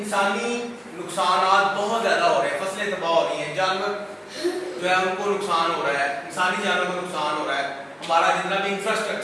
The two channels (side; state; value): both; identical; correlation 1.00